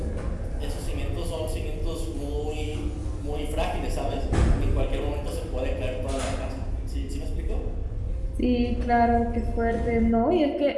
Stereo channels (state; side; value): identical; both; correlation 1.00